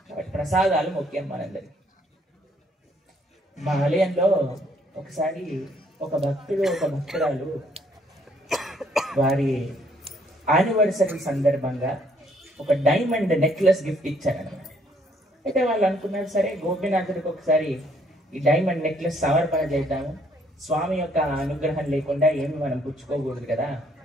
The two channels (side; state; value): both; normal; correlation 0.66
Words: కాబట్టి ప్రసాదాలు ముఖ్యం మనందరికి. మా ఆలయంలో ఒకసారి ఒక భక్తుడు ఒక భక్తురాలు వారి యానివర్సరీ సందర్భంగా ఒక డైమండ్ నెక్లెస్ గిఫ్ట్ ఇచ్చారనమాట. అయితే వాళ్ళు అనుకున్నారు సరే గోపీనాథుడికి ఒకసారి ఈ డైమండ్ నెక్లెస్ సమర్పణ చేద్దాము, స్వామి యొక్క అనుగ్రహం లేకుండా ఏమి మనం పుచ్చుకోకూడదు కదా